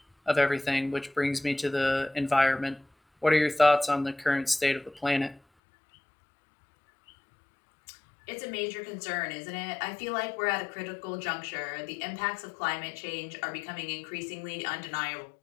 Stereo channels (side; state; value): right; drops out; at 5.4 s